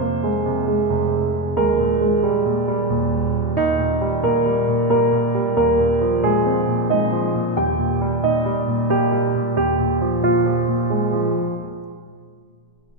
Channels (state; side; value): normal; both; correlation 0.14